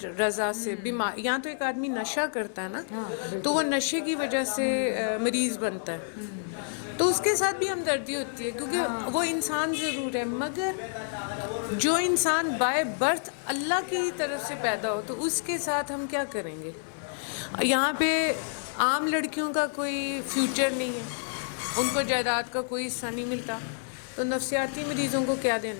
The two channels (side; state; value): right; silent; digital silence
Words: رضا سے بیمار, یہاں تو ایک آدمی نشہ کرتا ہے نا, تو وہ نشے کی وجہ سے مریض بنتا ہے, تو اس کے ساتھ بھی ہمدردی ہوتی ہے کیونکہ وہ انسان ضرور ہے, مگر جو انسان بائی برتھ اللہ کی طرف سے پیدا ہو تو اس کے ساتھ ہم کیا کریں گے؟ یہاں پہ عام لڑکیوں کا کوئی فیوچر نہیں ہے, ان کو جائیداد کا کوئی حصہ نہیں ملتا, تو نفسیاتی مریضوں کو کیا